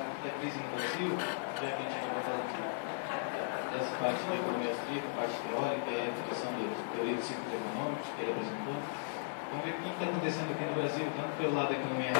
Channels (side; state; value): right; silent; digital silence